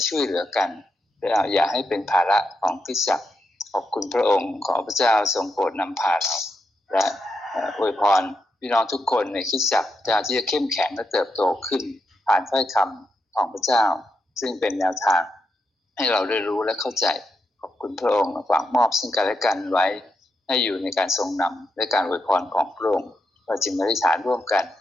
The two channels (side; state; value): both; normal; correlation 0.84